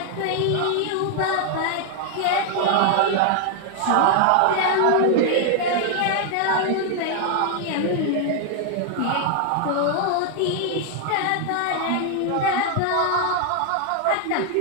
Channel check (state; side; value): different; both; correlation 0.00